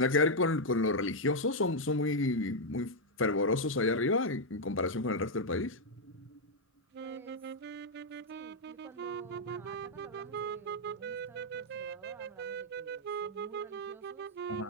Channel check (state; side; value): normal; both; correlation -0.02